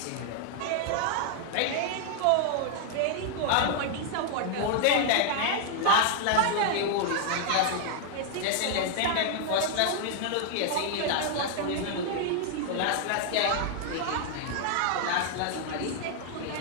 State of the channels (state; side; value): different; both; correlation 0.00